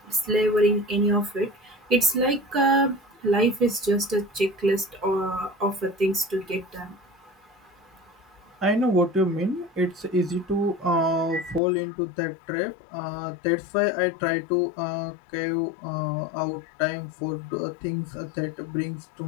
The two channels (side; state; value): right; drops out; at 11.6 s